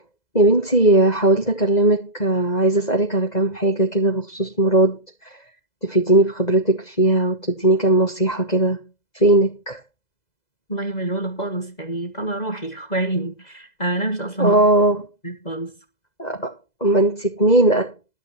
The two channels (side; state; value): right; late; 2.0 ms